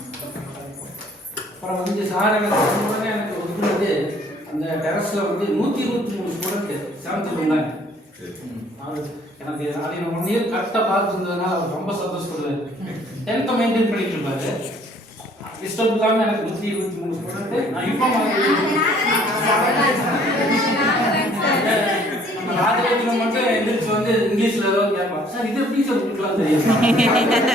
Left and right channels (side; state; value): both; normal; correlation 0.59